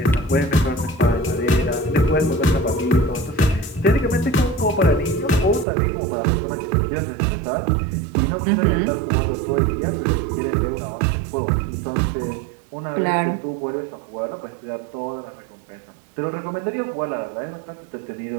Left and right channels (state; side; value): drops out; left; at 5.7 s